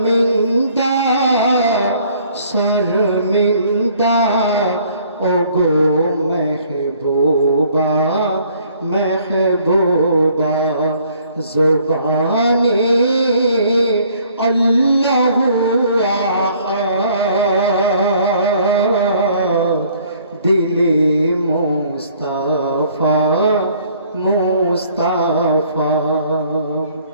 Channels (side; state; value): both; inverted; correlation -0.60